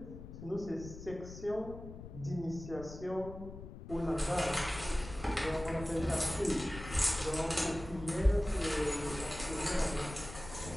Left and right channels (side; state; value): left; noise; rumble, 12 dB below the sound